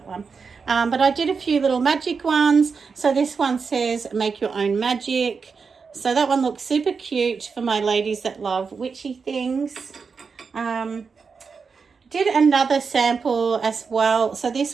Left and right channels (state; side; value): quieter; left; 5.3 dB